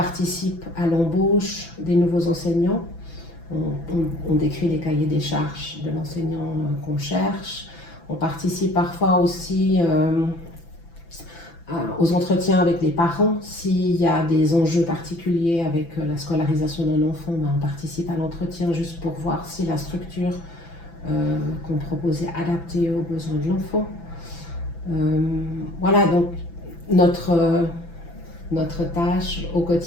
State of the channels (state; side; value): late; right; 6.0 ms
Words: à l'embauche des nouveaux enseignants. On décrit les cahiers des charges de l'enseignant qu'on cherche. On participe parfois aussi aux entretiens avec les parents. S'il y a des enjeux particuliers avec la scolarisation d'un enfant, on participe à l'entretien juste pour voir si la structure qu'on propose est adaptée aux besoins de l'enfant. Voilà, donc notre tâche au